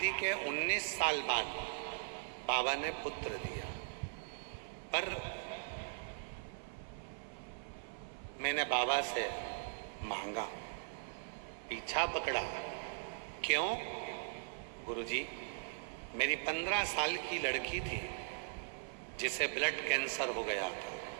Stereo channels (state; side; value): silent; left; 51 dB below the other